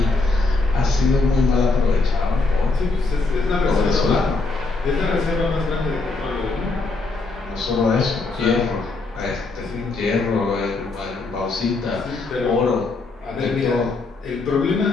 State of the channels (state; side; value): quieter; right; 3.6 dB